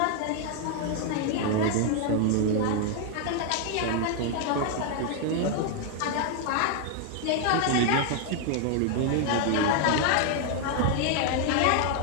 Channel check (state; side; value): different; both; correlation 0.00